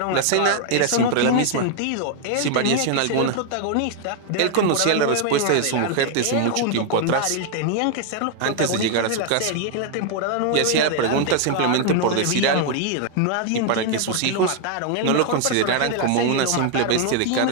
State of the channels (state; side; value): different; both; correlation 0.00